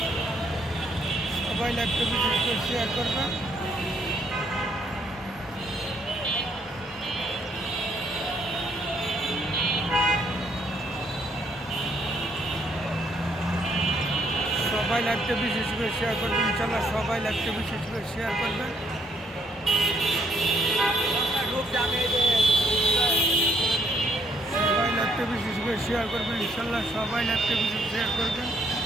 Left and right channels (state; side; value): normal; both; correlation 0.69